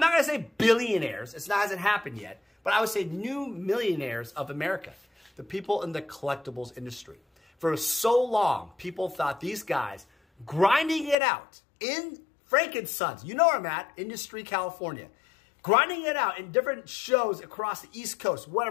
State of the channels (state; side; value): drops out; right; at 11.2 s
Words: not going to say billionaires. It hasn't happened yet. But I would say new millionaires of America. The people in the collectibles industry. For so long, people thought these guys grinding it out in Frankensons. You know where I'm at, Industry, California. Grinding it out in different shows across the East Coast,